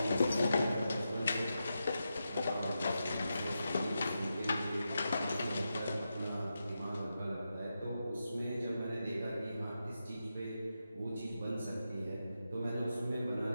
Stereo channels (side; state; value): both; inverted; correlation -0.88